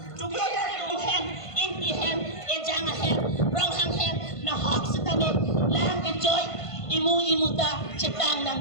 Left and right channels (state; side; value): late; right; 1.5 ms